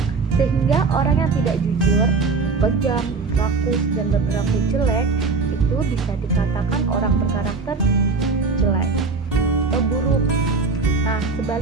sehingga orang yang tidak jujur, kejam, rakus, dan berperilaku jelek itu bisa dikatakan orang berkarakter jelek atau buruk. Nah,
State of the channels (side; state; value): left; quieter; 4.4 dB